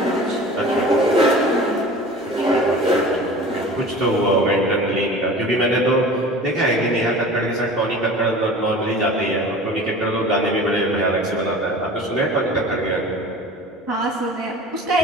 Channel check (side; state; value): both; normal; correlation 0.39